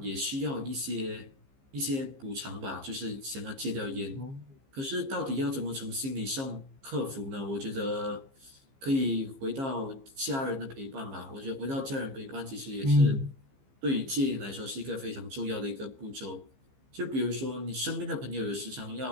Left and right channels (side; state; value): left; late; 15 ms